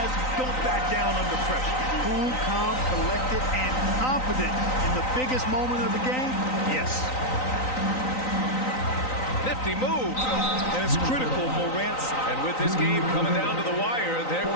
who don't back down under pressure. Cool, calm, collected, and confident in the biggest moment of the game. Yes. Nifty move. And it's critical, Morant's. And with this game coming down to the wire, they're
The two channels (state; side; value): late; right; 3.9 ms